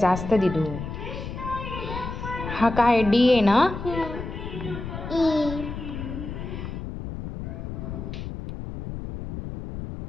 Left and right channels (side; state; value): left; noise; rumble, 8 dB below the sound